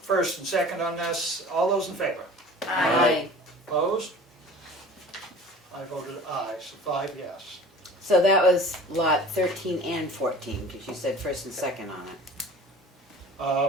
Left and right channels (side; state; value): both; normal; correlation 0.43